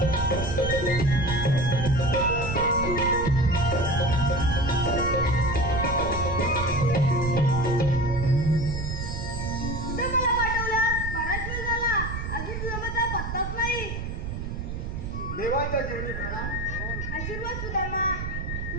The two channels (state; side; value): noise; right; rumble, 5 dB below the sound